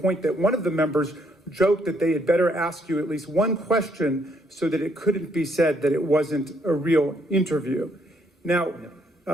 that one of the members joked that they had better ask you at least one question so that it couldn't be said that it wasn't a real interview. Now,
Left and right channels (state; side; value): normal; both; correlation 0.71